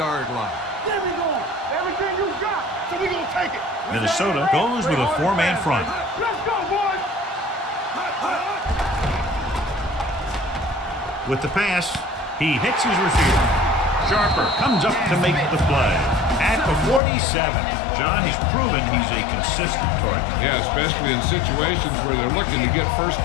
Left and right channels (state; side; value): drops out; right; at 17.0 s